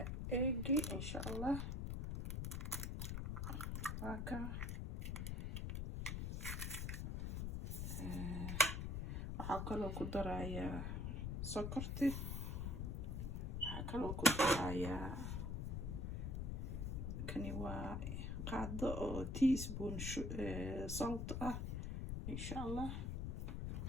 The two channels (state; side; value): noise; left; rumble, 2 dB below the sound